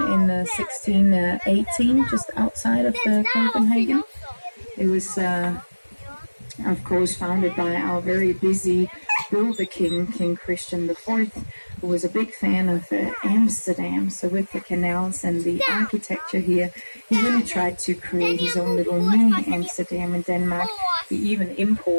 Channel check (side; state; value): both; inverted; correlation -1.00